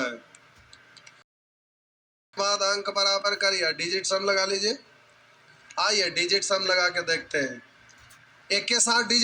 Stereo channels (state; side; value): identical; both; correlation 1.00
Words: बाद अंक बराबर करिए, डिजिट सम लगा लीजिए। आइए डिजिट सम लगा के देखते हैं, एक के साथ